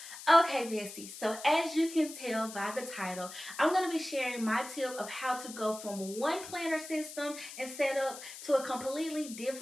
Okay, Bestie, so as you can tell by the title, I'm going to be sharing my tip of how to go from one planner system and setup to a completely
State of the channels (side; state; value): left; noise; hiss, 13 dB below the sound